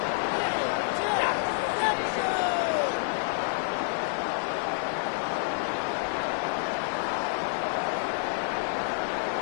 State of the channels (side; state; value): right; silent; digital silence